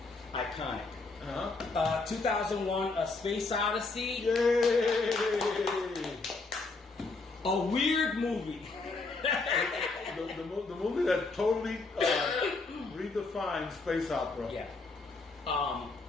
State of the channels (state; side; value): quieter; right; 3.7 dB